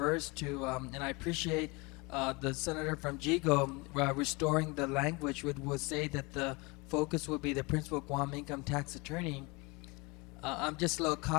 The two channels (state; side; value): quieter; right; 26.5 dB